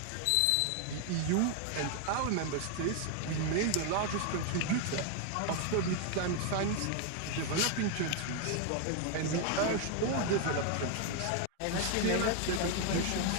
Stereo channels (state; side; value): different; both; correlation 0.01